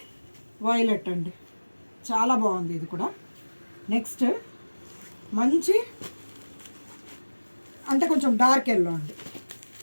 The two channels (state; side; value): inverted; both; correlation -1.00